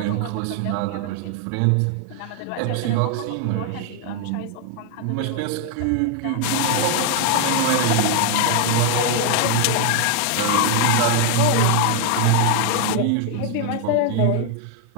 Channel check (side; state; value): both; different; correlation 0.00